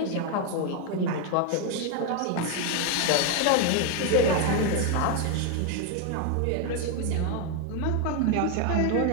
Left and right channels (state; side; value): different; both; correlation 0.01